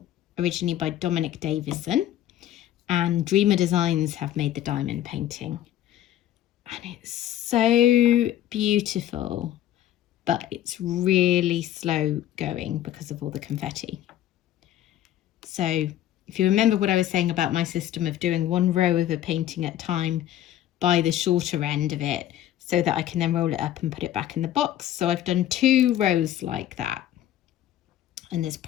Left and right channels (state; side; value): quieter; right; 12.3 dB